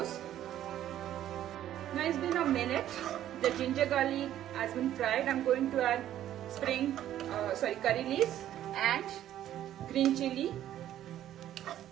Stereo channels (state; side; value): quieter; left; 12.0 dB